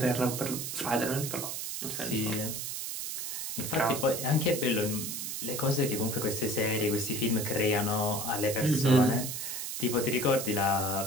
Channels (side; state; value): right; noise; hiss, 4 dB below the sound